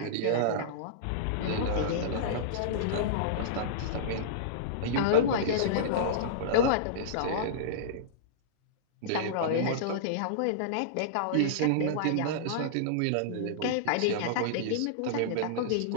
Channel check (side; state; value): both; different; correlation -0.03